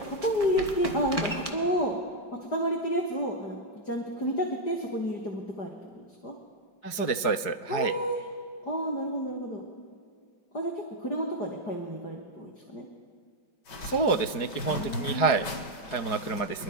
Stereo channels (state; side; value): late; right; 4.7 ms